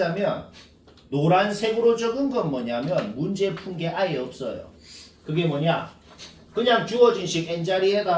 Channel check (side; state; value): both; identical; correlation 1.00